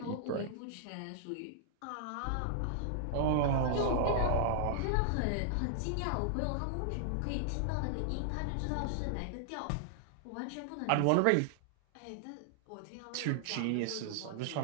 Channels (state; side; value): different; both; correlation 0.00